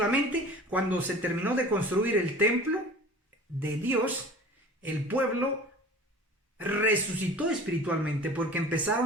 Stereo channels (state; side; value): normal; both; correlation 0.42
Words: cuando se terminó de construir el templo de Dios, el pueblo resucitó espiritualmente porque